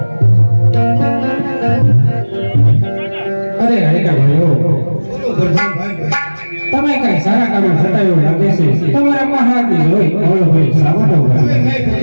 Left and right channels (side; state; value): both; inverted; correlation -1.00